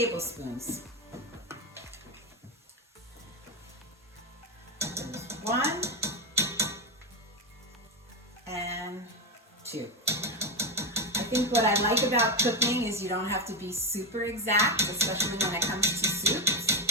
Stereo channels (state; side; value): normal; both; correlation 0.11